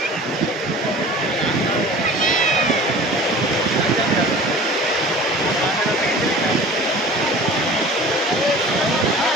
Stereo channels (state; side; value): normal; both; correlation 0.42